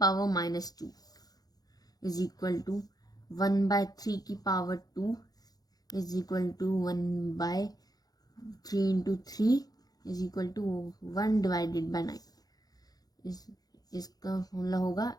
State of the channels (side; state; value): right; late; 0.19 ms